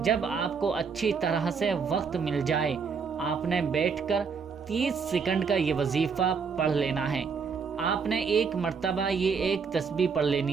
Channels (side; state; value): left; quieter; 5.7 dB